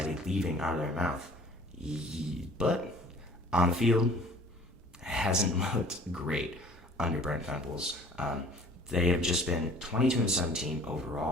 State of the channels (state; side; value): normal; both; correlation 0.50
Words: leaving out of their mouth. But on the field, hasn't looked great under Brent Venables. They have just been 22-17